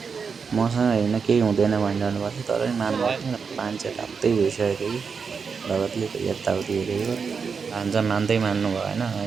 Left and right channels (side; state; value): left; quieter; 5.7 dB